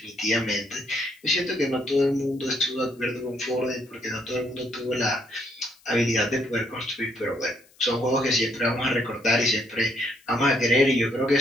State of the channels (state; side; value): noise; left; hiss, 30 dB below the sound